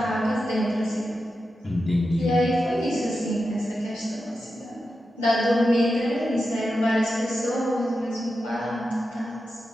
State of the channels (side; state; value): both; normal; correlation 0.90